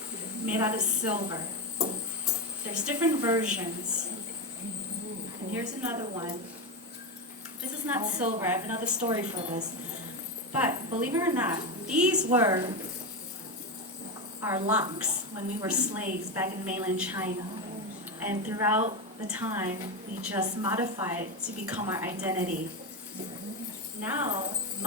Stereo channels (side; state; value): both; normal; correlation 0.14